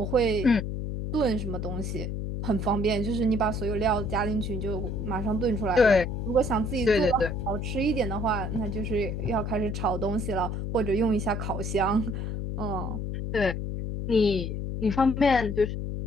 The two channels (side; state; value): left; noise; hum, 3 dB below the sound